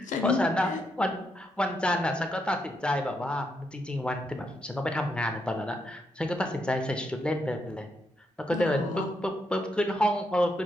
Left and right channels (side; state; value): both; normal; correlation 0.80